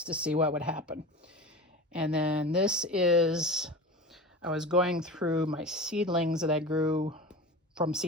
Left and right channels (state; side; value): normal; both; correlation 0.32